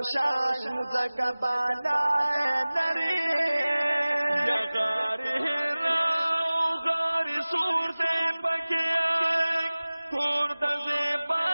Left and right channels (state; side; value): inverted; both; correlation -0.99